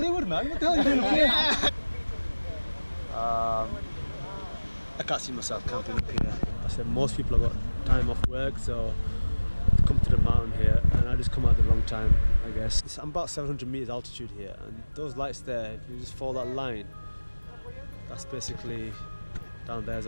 man. What the hell are you doing here? I can't see myself camping up here. I said most people have got time off work, so come to the mountain here, and I just come at the wrong time, I guess. I'm about 700 meters altitude here, and those lights there, if you just follow that line, that's basically down there's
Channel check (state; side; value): inverted; both; correlation -1.00